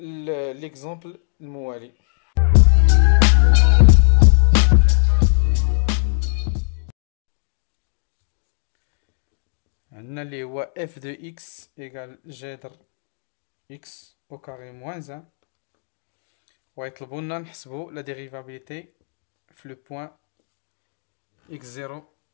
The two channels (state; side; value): silent; right; digital silence